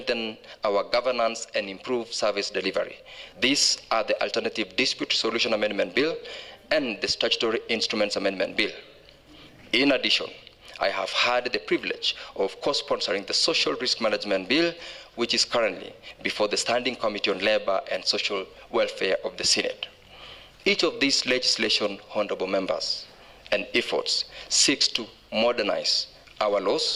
our governance and improve service delivery. These are the Alternative Dispute Resolution Amendment Bill and the Statutory Instruments Amendment Bill. In addition, I have had the privilege of co-sponsoring the Social Risk Management Bill, which is currently before the Standing Committee on Labor and Social Welfare of the Senate. Each of these legislation, honorable members, and efforts seeks to modernize our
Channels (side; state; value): both; identical; correlation 1.00